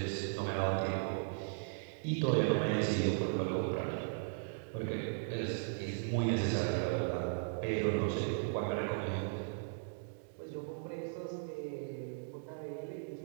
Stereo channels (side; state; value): left; silent; digital silence